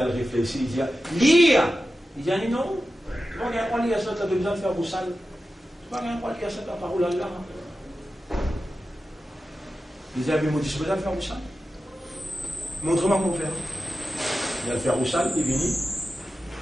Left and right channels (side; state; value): both; normal; correlation 0.93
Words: réfléchi, il dit lire. Il dit non, tu vas rien lire ça, tu as besoin de faire vos salles. Tu vas rien lire ça, ta parole là. Il dit mais moi, tu as besoin de faire vos salles. Montre-moi comment faire. Il a le faire vos salles, il est venu.